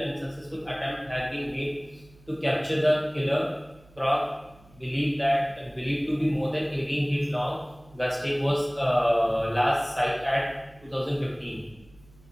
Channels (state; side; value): noise; right; hum, 27 dB below the sound